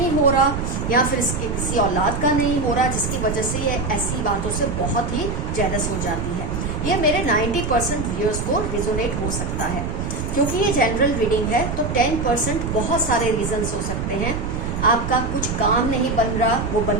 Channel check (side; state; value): right; noise; rumble, 4 dB below the sound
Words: हो रहा या फिर इसके किसी औलाद का नहीं हो रहा, जिसकी वजह से ये ऐसी बातों से बहुत ही जेलस हो जाती है। ये मेरे 90% व्यूअर्स को रिजोनेट हो सकता है। क्योंकि ये जनरल रीडिंग है तो 10% बहुत सारे रीजंस हो सकते हैं। आपका कुछ काम नहीं बन रहा, वो